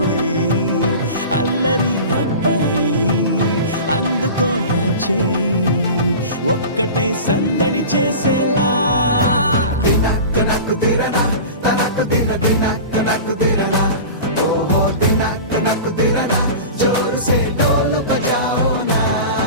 అల్లరి అబ్బాయి అందుకు అందుకో నా చేయి ఒక్కటై సందడి చేసేలా దినక్క నక్కు దిరనా తనకు దిన దినక్క నక్కు దిరనా ఓహో దినక్క నక్కు దిరనా జోరు సే డోలు బజాओ నా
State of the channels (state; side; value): inverted; both; correlation -0.34